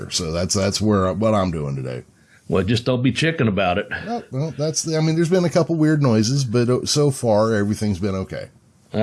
So that's what I'm doing today. Well, just don't be chicken about it. Well, there's been a couple weird noises, but so far everything's been okay.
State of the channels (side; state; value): both; identical; correlation 1.00